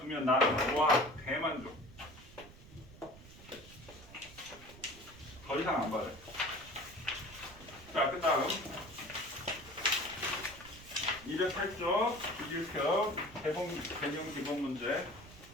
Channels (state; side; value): noise; right; rumble, 19 dB below the sound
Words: 나는 와 대만족. 더 이상 안 받아요. 자, 그 다음 208쪽 주기율표 개념 기본 문제.